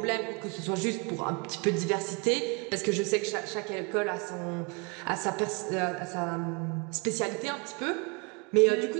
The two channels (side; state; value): left; quieter; 32.0 dB